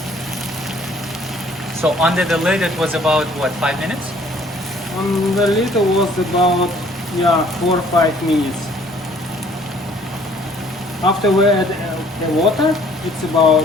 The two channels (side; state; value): both; normal; correlation 0.58